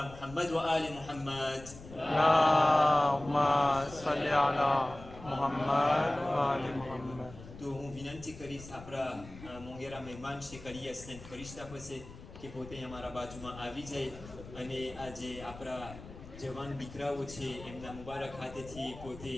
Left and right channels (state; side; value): noise; left; rumble, 16 dB below the sound